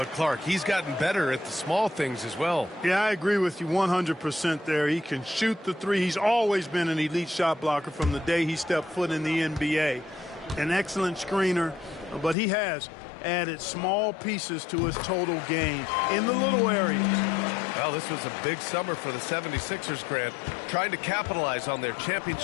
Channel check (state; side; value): drops out; right; at 12.4 s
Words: Clark, he's gotten better at the small things as well. Yeah, I agree with you 100% there. He can shoot the three. He's always been an elite shot blocker from the day he stepped foot in the NBA. An excellent screener, but he has added small pieces to his total game in the little areas. Well, this was a big summer for the 76ers, Grant, trying to capitalize on their